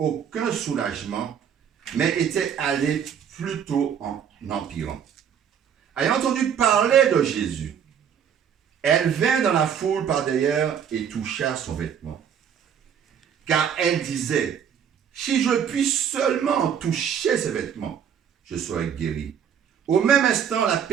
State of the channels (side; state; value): left; quieter; 8.2 dB